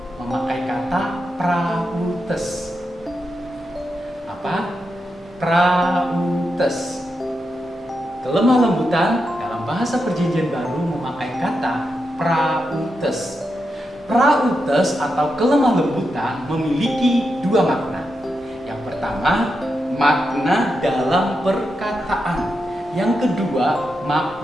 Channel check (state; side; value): normal; both; correlation 0.86